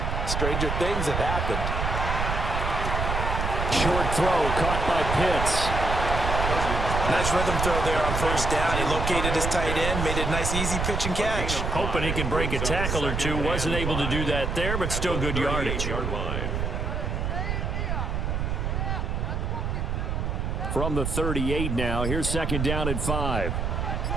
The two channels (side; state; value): right; noise; rumble, 1 dB below the sound